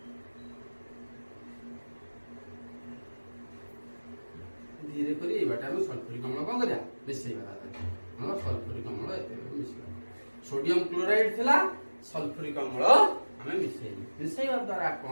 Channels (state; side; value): inverted; both; correlation -1.00